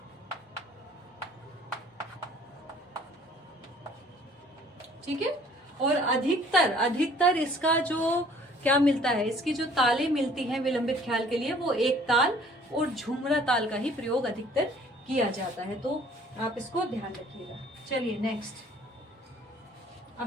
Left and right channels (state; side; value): normal; both; correlation 0.55